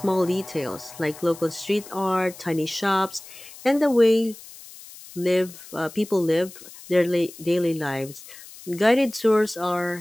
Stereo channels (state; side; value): noise; left; hiss, 18 dB below the sound